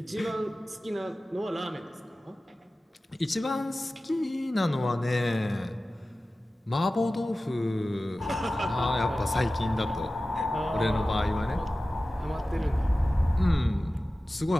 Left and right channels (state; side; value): normal; both; correlation 0.96